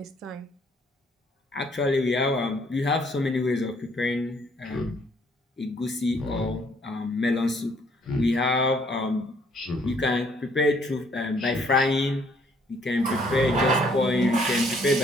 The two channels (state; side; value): normal; both; correlation 0.65